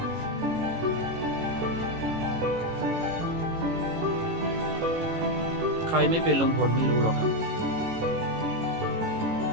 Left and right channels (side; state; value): left; late; 18 ms